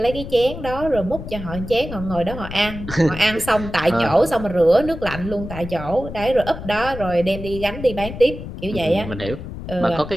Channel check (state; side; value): noise; left; rumble, 10 dB below the sound